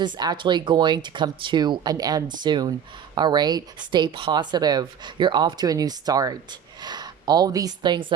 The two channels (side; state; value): left; quieter; 8.4 dB